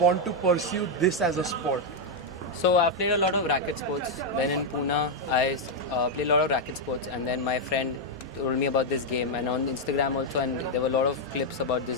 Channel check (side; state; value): both; normal; correlation 0.00